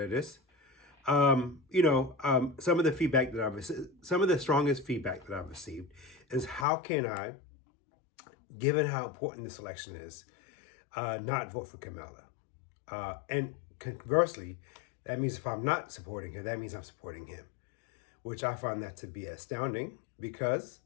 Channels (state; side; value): drops out; right; at 6.7 s